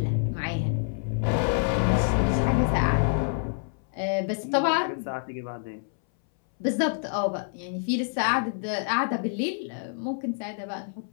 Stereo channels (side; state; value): right; silent; 60 dB below the other